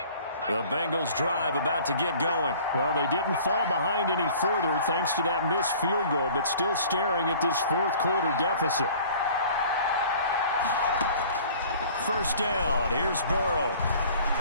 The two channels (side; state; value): both; inverted; correlation -0.49